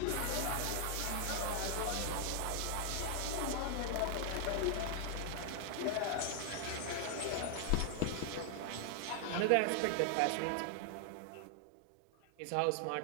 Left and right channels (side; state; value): both; different; correlation 0.00